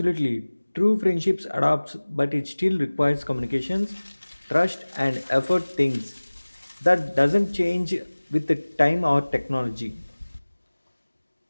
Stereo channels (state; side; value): inverted; both; correlation -1.00